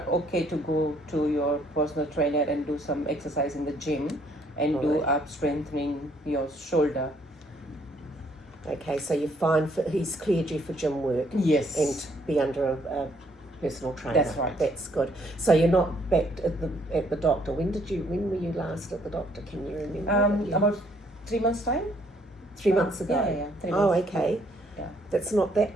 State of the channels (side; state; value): both; normal; correlation 0.66